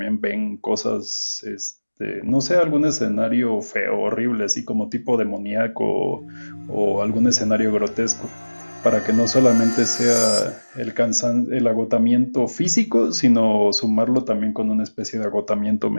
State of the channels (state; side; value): inverted; both; correlation -1.00